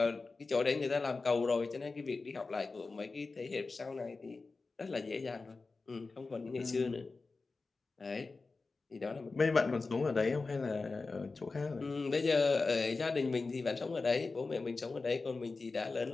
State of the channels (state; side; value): quieter; right; 3.9 dB